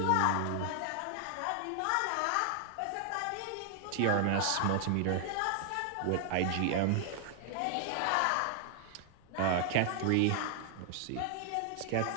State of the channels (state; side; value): different; both; correlation 0.00